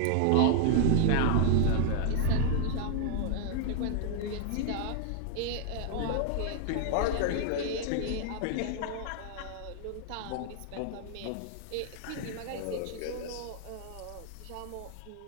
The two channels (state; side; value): different; both; correlation 0.00